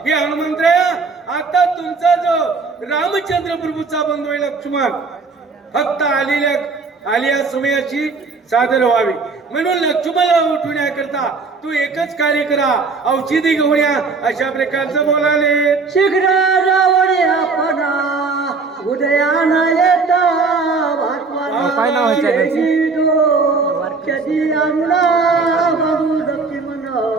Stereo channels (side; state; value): left; quieter; 4.4 dB